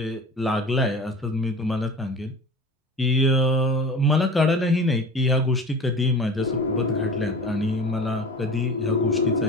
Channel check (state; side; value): normal; both; correlation 0.37